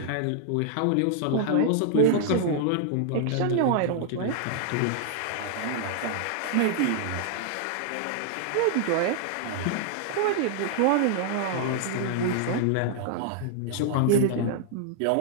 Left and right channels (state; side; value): different; both; correlation -0.01